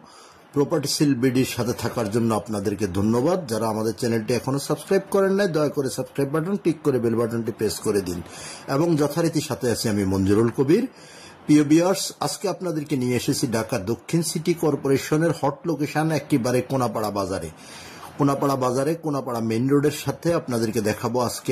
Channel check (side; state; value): both; identical; correlation 1.00